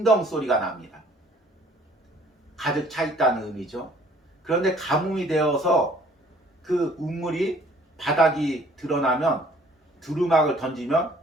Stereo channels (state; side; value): normal; both; correlation 0.57